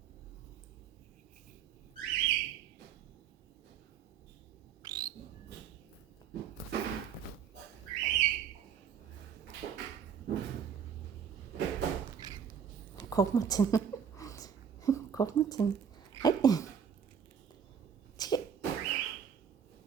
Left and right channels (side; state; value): left; quieter; 7.7 dB